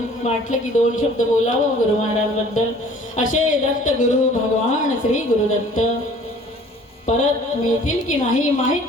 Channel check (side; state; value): both; normal; correlation 0.52